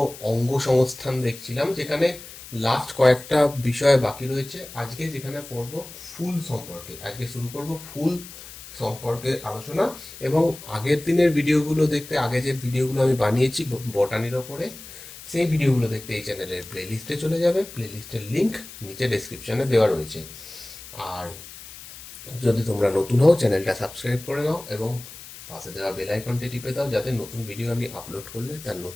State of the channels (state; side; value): noise; left; hiss, 15 dB below the sound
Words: অঙ্গ সংস্থান দেখছিলাম, যেখানে লাস্ট কয়েকটা বিষয় বাকি রয়েছে। আজকে যেখানে পড়ব ফুল সম্পর্কে, আজকে শুরু করব ফুল সম্পর্কে আলোচনা। এবং আগের দিনের ভিডিওগুলো দেখতে, আগে যে ভিডিওগুলো আমি বানিয়েছি বটানির ওপরে, সেই ভিডিওগুলো দেখতে এই চ্যানেলের প্লেলিস্টে চলে যাবে। প্লেলিস্টের লিংক নিচে ডেসক্রিপশনে দেওয়া রয়েছে। আর যদি তোমরা নতুন হও, চ্যানেলটা সাবস্ক্রাইব করে নাও এবং পাশে দেওয়া বেল আইকনটি টিপে দাও, যাতে নতুন ভিডিও আমি আপলোড করলে তার